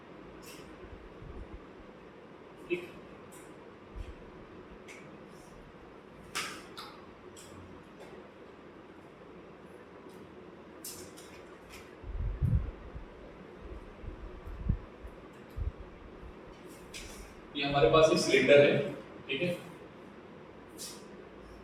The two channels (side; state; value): both; identical; correlation 1.00